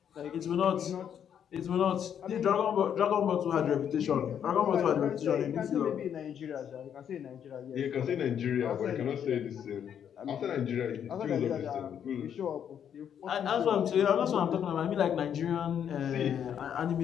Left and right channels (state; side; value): quieter; right; 8.8 dB